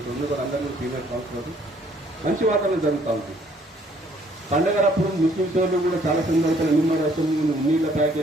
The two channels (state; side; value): normal; both; correlation 0.63